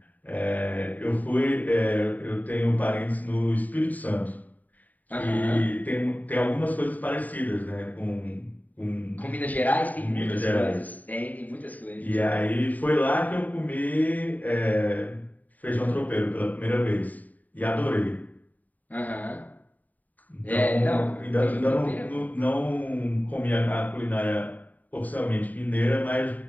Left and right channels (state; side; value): late; right; 0.078 ms